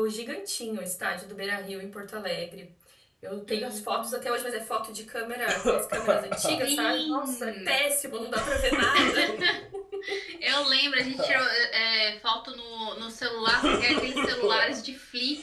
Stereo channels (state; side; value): identical; both; correlation 1.00